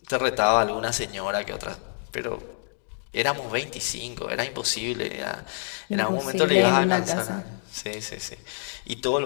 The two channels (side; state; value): right; silent; 60 dB below the other